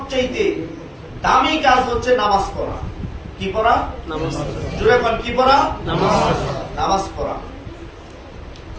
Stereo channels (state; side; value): identical; both; correlation 1.00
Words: দামি কাজ হচ্ছে নামাজ পড়া। কি পড়া? নামাজ। জোরে বল, কি পড়া? নামাজ। নামাজ পড়া।